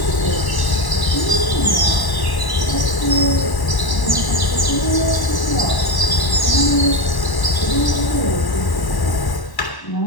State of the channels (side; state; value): right; late; 1.1 ms